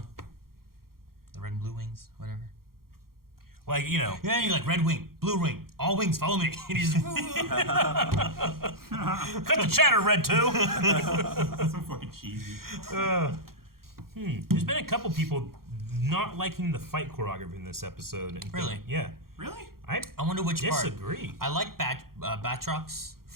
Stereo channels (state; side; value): late; left; 0.93 ms